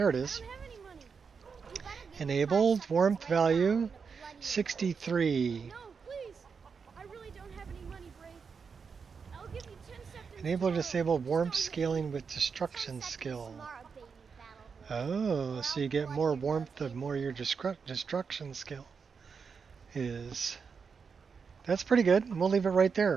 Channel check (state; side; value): quieter; left; 5.7 dB